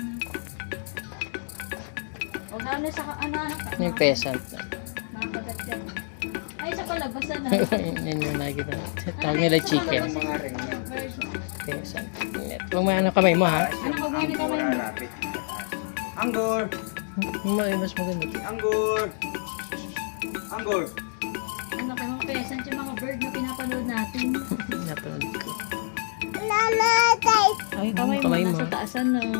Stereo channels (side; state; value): right; silent; 60 dB below the other